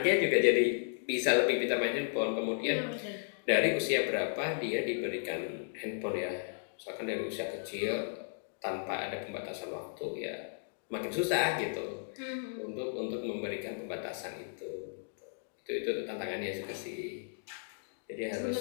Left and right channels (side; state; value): right; silent; digital silence